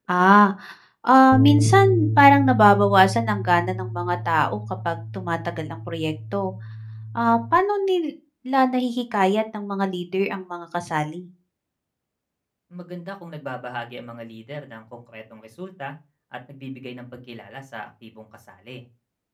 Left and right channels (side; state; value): both; identical; correlation 1.00